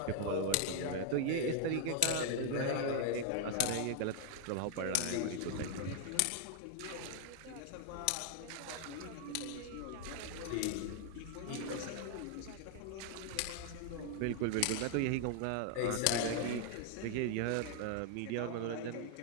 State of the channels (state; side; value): different; both; correlation 0.00